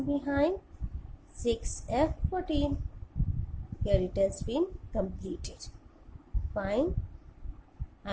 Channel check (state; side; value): identical; both; correlation 1.00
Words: behind. 6f14. Here it has been completed. Fine. I